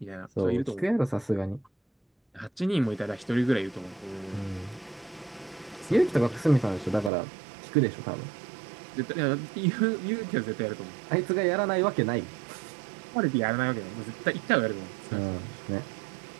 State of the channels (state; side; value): drops out; left; at 7.1 s